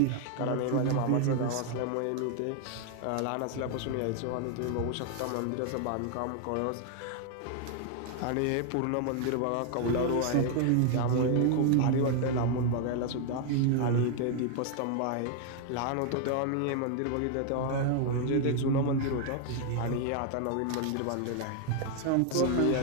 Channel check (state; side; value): different; both; correlation 0.00